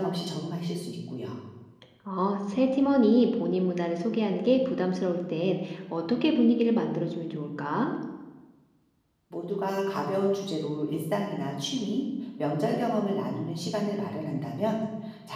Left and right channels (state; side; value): identical; both; correlation 1.00